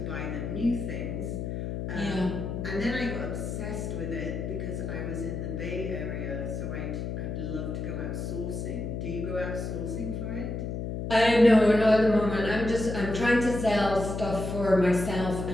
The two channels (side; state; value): left; noise; hum, 4 dB below the sound